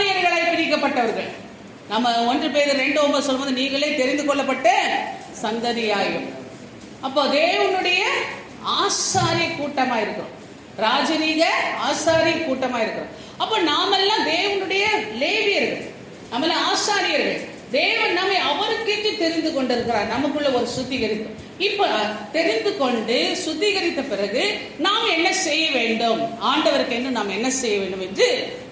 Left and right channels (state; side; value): identical; both; correlation 1.00